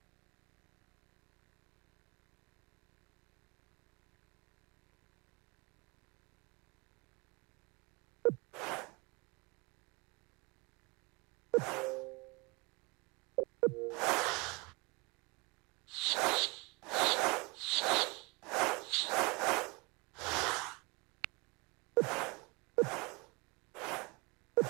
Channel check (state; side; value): quieter; left; 27.1 dB